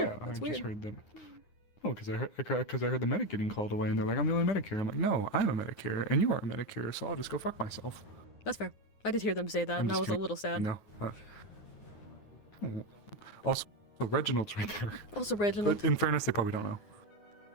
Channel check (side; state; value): right; late; 9.7 ms